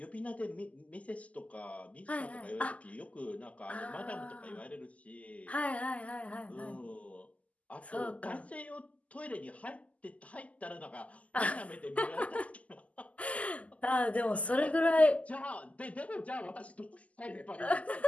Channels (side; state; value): right; late; 0.070 ms